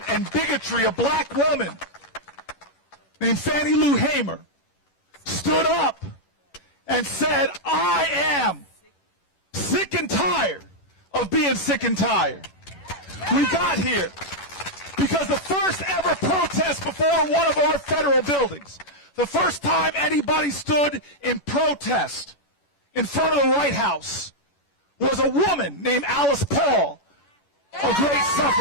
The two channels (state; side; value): late; right; 11 ms